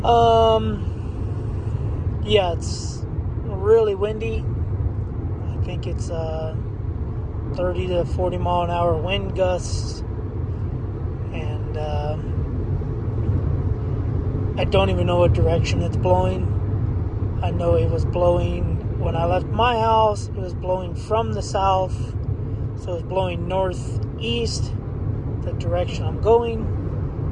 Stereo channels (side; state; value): both; identical; correlation 1.00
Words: Yeah, it's really windy. I think it's 30 to 40 mile an hour wind gusts. And I don't even know what direction it's blowing. I know it was blowing when I left my house. It was blowing from the south. So it's blowing northeast, the direction I'm going,